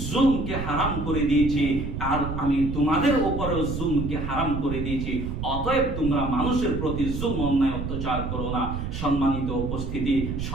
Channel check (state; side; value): noise; right; rumble, 5 dB below the sound